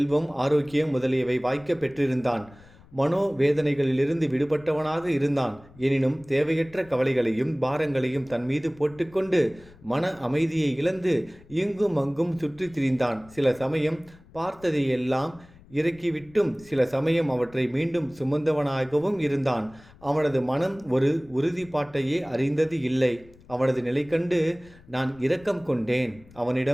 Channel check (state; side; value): noise; left; rumble, 24 dB below the sound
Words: ஆரோக்கியம் முதலியவை வாய்க்க பெற்றிருந்தான். மனோவேதனைகளிலிருந்து விடுபட்டவனாக இருந்தான். எனினும் தேவையற்ற கவலைகளையும் பாரங்களையும் தன் மீது போட்டுக்கொண்டு மன அமைதியை இழந்து இங்கும் அங்கும் சுற்றி திரிந்தான். சில சமயம் பார்த்ததையெல்லாம் இறக்கிவிட்டும் சில சமயம் அவற்றை மீண்டும் சுமந்தவனாகவும் இருந்தான். அவனது மனம் ஒரு உறுதிப்பாட்டையே அறிந்தது இல்லை. அவனது நிலை கண்டு நான் இரக்கம் கொண்டேன்.